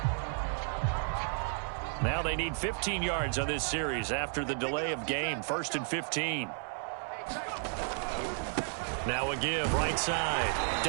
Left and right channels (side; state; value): left; silent; 56 dB below the other